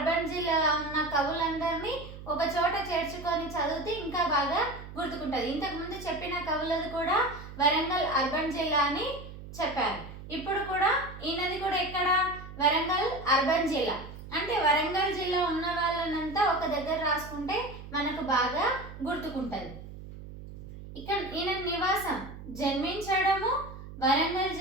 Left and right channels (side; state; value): right; noise; hum, 13 dB below the sound